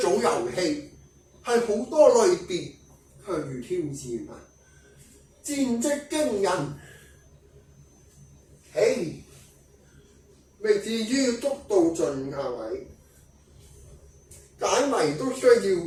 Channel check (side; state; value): both; identical; correlation 1.00